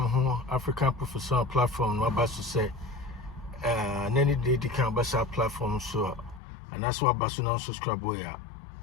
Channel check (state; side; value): drops out; right; at 6.4 s